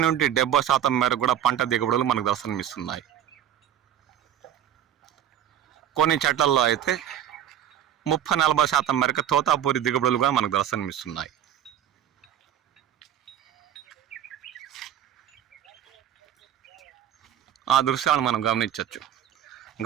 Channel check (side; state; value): left; quieter; 10.6 dB